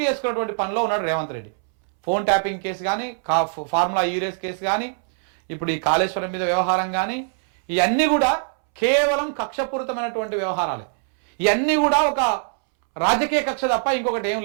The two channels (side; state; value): left; silent; 64 dB below the other